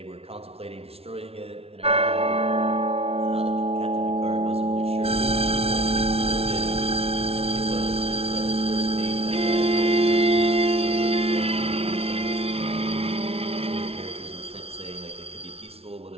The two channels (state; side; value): late; left; 0.29 ms